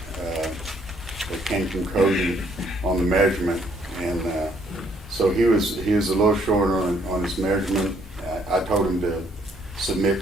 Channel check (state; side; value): normal; both; correlation 0.67